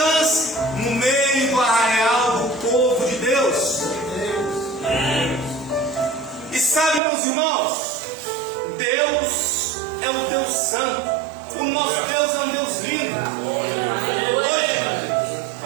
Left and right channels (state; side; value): drops out; left; at 7.0 s